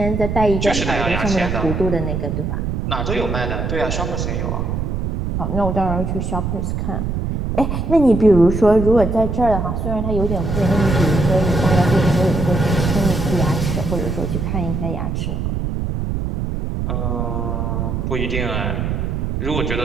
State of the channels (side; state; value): right; noise; rumble, 2 dB below the sound